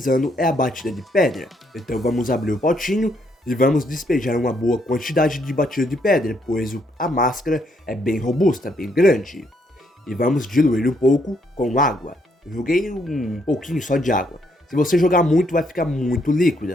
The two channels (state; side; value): normal; both; correlation 0.73